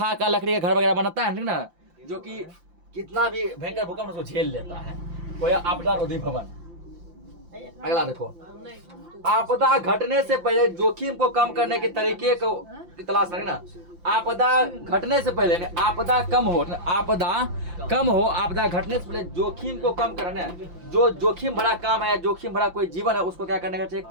का लकड़ी का घर वगैरह बनाता है ठीक ना, जो कि कितना भी भयंकर भूकंप उसको झेल लेता है। वो आपदा रोधी भवन। अगला देखो, आपदा घटने से पहले जोखिम को कम करने के तरीके को तलाश करें ना। आपदा घटने से पहले, आपदा कम हो, आपदा घटने से पहले जोखिम को कम करना। जो जोखिम भरा काम है, जोखिम भरा कोई जीवन है, उसको क्या करने का चाहिए,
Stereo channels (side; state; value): left; late; 5.8 ms